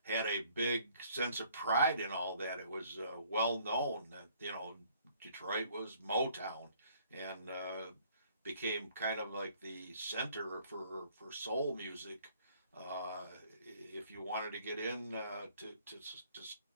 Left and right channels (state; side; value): inverted; both; correlation -0.61